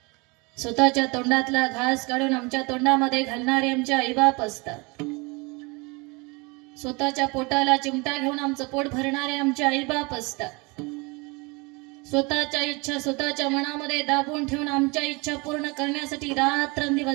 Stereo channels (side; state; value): left; quieter; 27.5 dB